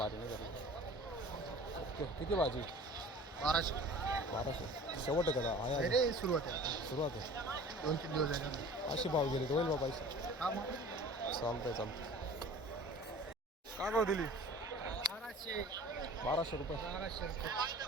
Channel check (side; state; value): both; normal; correlation 0.43